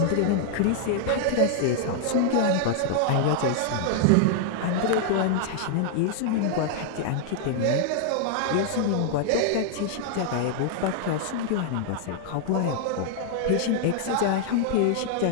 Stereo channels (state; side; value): different; both; correlation -0.01